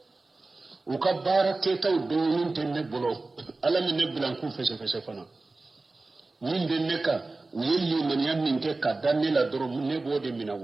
o ka bara ke taw donin tene bolo ala mi ne blan ku fese fana min de neka yelli man yamin ke ka danila doro ne bode mina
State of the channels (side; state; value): left; quieter; 3.4 dB